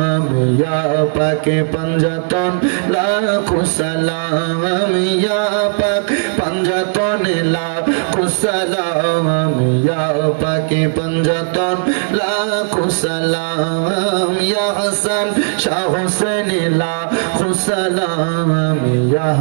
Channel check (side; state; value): left; silent; digital silence